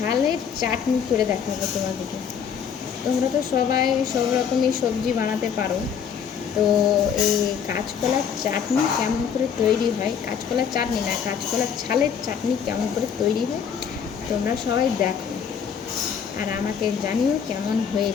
চাটনি করে দেখাবো তোমাদেরকে। তোমরা তো সবাই সব রকমই সবজি বানাতে পারো, তো এই কাঁচকলার চাটনি কেমন করে তৈরি হয়, কাঁচকলার চাটনি না, কাঁচকলার ছালের চাটনি কেমন করে তৈরি হয় তোমরা সবাই দেখো আর আমাকে জানিও কেমন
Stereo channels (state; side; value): quieter; right; 7.4 dB